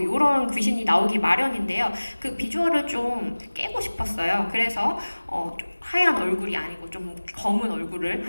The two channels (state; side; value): inverted; both; correlation -1.00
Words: 이런 귀신이 나오기 마련인데요. 그 비주얼을 좀 깨고 싶었어요. 그래서 하얀 얼굴이 아니고 좀 검은 얼굴을